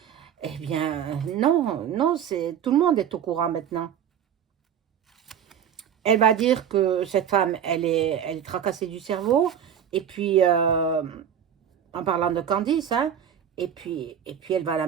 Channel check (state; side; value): quieter; left; 8.9 dB